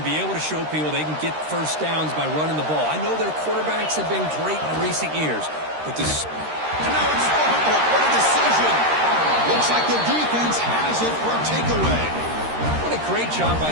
be able to show people they can get first downs by running the ball. I know their quarterbacks have been great in recent years, but this... And now it's fumbled. What a decision. Looks like the defense has it for a takeaway. What a great job by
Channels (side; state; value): left; late; 13 ms